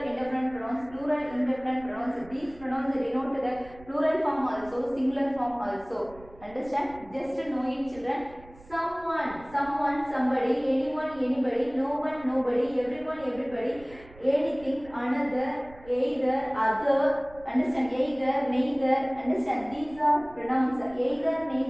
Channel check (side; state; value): right; noise; rumble, 22 dB below the sound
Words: indefinite pronouns, plural indefinite pronouns. These pronouns denote the plural form also, singular form also. Understand? Just know it, children. Someone, somebody, anyone, anybody, no one, nobody, everyone, everybody, anything, another, either, other. Understand? Either, neither. Understand? These are pronouns. Either,